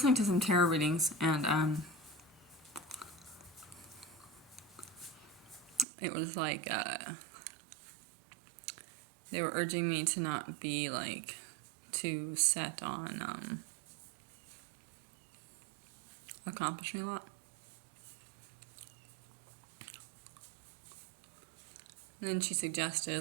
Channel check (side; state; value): left; drops out; at 5.9 s